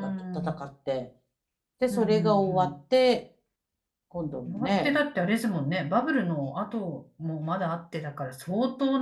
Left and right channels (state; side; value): identical; both; correlation 1.00